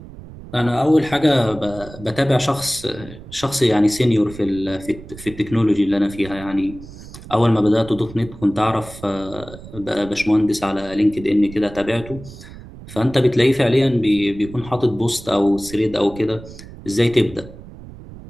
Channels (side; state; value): right; noise; rumble, 16 dB below the sound